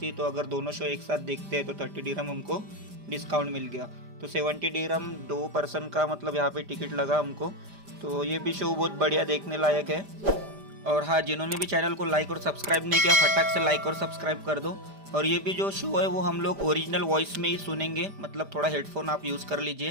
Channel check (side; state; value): left; late; 5.0 ms